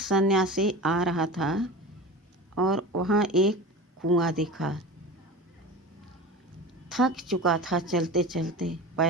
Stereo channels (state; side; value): normal; both; correlation 0.32